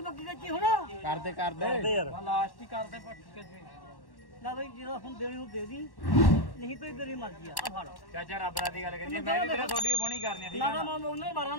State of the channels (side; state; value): right; late; 1.1 ms